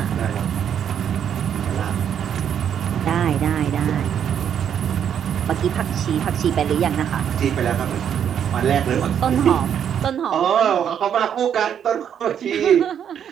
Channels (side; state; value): left; quieter; 8.8 dB